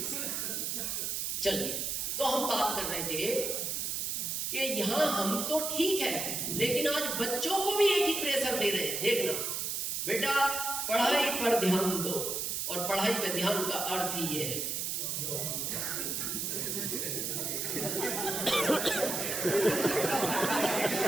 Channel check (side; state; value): right; noise; hiss, 1 dB below the sound